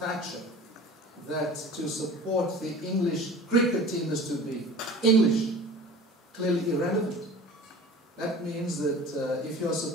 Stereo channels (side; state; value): both; normal; correlation 0.41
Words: that to support the English cricket team is to be English, clearly irrelevant. That means that if you're